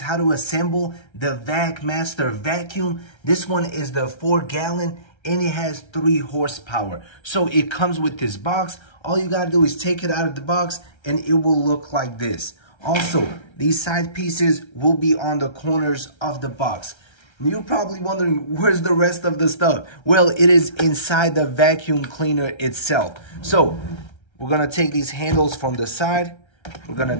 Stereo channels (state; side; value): late; right; 1.3 ms